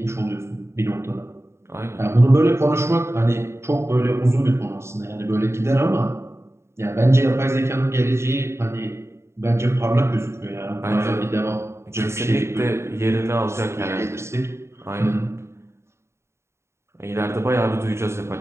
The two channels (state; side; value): late; left; 0.13 ms